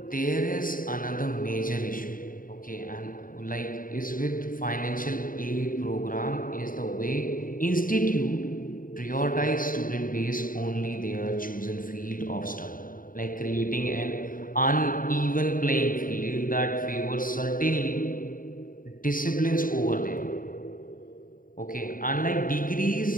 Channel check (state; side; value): late; right; 0.40 ms